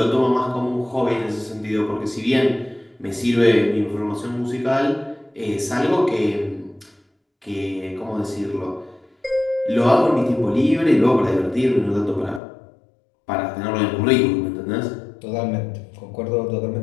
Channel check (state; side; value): drops out; right; at 12.4 s